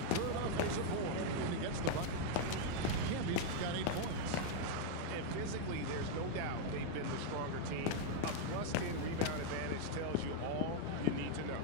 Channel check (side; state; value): both; different; correlation 0.00